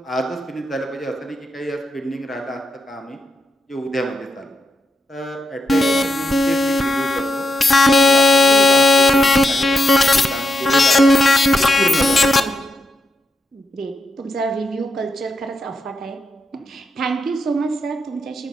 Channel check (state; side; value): normal; both; correlation 0.82